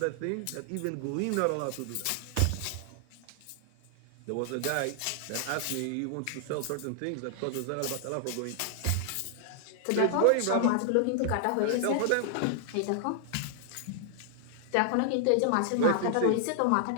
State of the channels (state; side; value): different; both; correlation -0.01